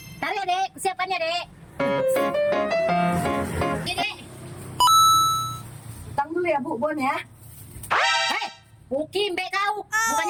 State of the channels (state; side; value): identical; both; correlation 1.00